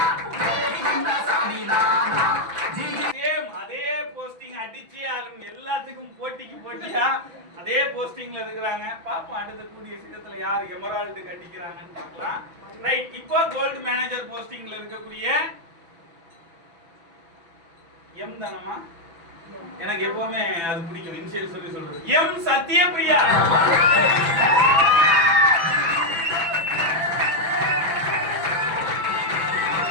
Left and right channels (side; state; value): left; late; 6.0 ms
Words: அதே போஸ்டிங் அடிச்சு எல்லாத்துக்கும் போட்டியா அதே போஸ்டிங்ல இருக்கிறாங்க. பாப்போம் அடுத்த கூடிய சீக்கிரத்துல யார் எமரால்டுக்கு அடிக்கிறாங்கன்னு பார்க்கலாம். ரைட், இப்போ கோல்டு மேனேஜர் போஸ்டிங்ல இருக்கக்கூடிய எம் தானமா, எனக்கு எப்பவுமே அது பிடிக்கும் இனிஷியல் சொல்லி சொல்றது. எம் சத்யபிரியா.